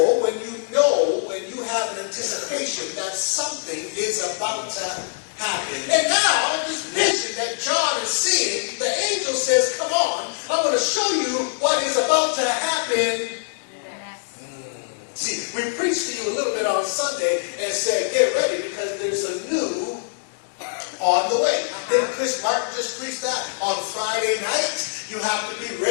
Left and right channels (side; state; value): right; silent; 63 dB below the other